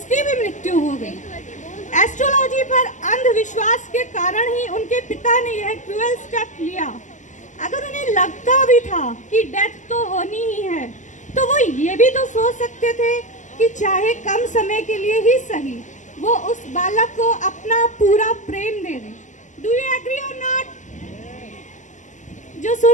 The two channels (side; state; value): right; late; 0.36 ms